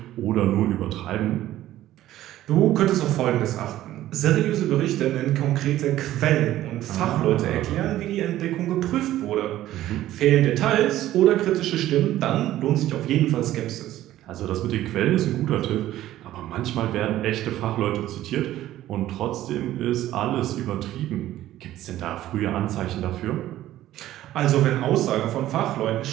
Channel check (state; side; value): quieter; left; 14.0 dB